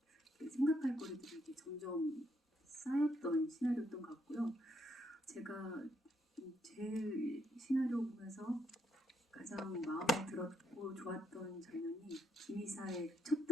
생각할 거리들이 이제 점점 쌓였던 시나리오였던 것 같고요. 제가 제일 시나리오 보면서 가장 마음에 들었고 좋았던 장면이 김이사의 첫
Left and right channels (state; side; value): normal; both; correlation 0.76